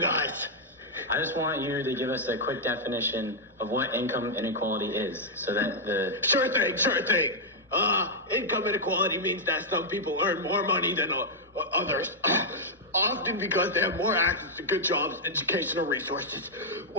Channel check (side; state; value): both; normal; correlation -0.05